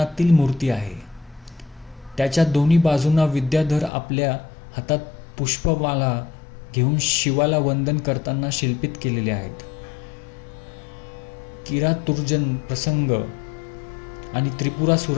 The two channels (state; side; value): drops out; right; at 3.9 s